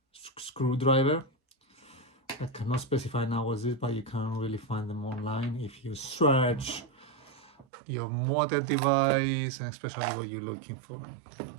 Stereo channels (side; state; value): left; drops out; at 7.7 s